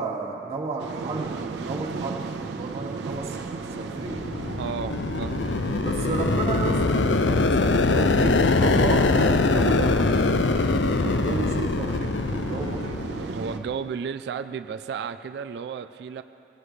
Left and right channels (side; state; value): both; normal; correlation 0.38